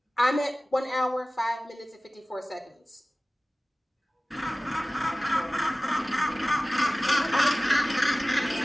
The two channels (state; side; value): normal; both; correlation 0.97